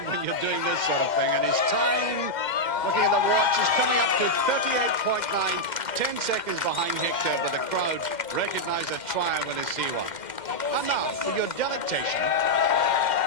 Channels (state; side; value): late; right; 2.1 ms